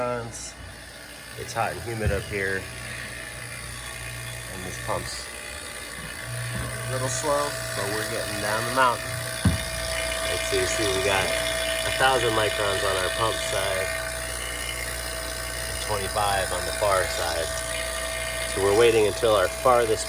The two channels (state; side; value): identical; both; correlation 1.00